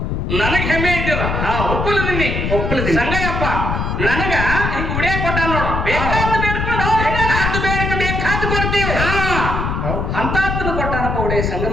ನನಗ್ ಹೆಮ್ಮೆ ಇದ್ದಿಲ್ಲ ಒಪ್ಪಲದಿನಿ ಸಂಗಯ್ಯಪ್ಪ ನನಗ ಹಿಂಗ ಉಡಿಯ ಕೊಟ್ಟ ನೋಡು ಬೇಕಾದ ಬೇಡ್ಕೊಂಡು ಬೇಕಾದ ಕೊಡ್ತೀವಿ ಅಂತಾತ್ನ ಕೊಟ್ಟಾನಪ್ಪ ಉಡಿಯ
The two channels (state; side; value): noise; left; rumble, 1 dB below the sound